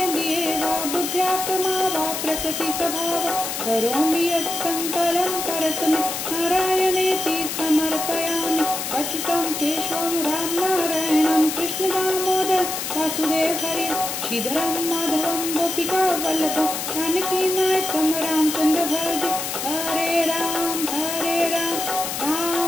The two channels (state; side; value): noise; left; hiss, 4 dB below the sound